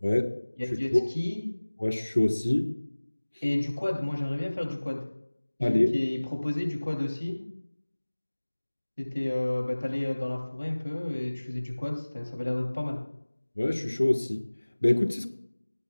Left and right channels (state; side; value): inverted; both; correlation -1.00